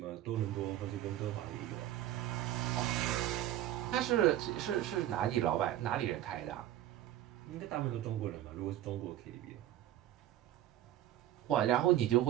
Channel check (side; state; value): left; quieter; 13.0 dB